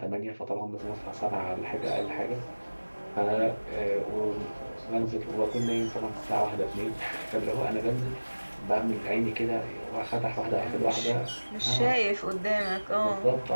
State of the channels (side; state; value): both; inverted; correlation -1.00